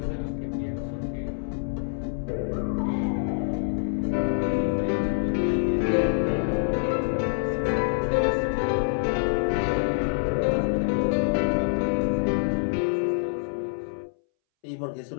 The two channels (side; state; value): right; silent; 61 dB below the other